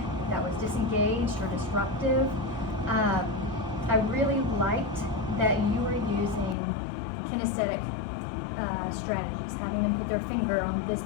that was disengaged or disruptive. I really liked that you were using kinesthetic strategies, having them put their finger on this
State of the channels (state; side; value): drops out; right; at 6.6 s